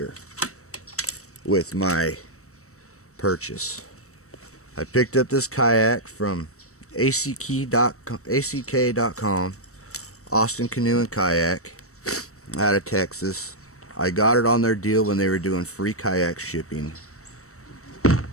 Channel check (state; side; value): late; right; 0.64 ms